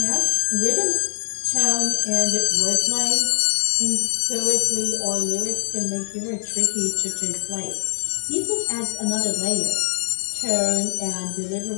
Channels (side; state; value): right; silent; digital silence